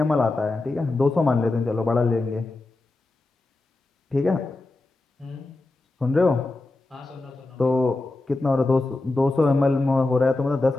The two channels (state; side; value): quieter; right; 3.0 dB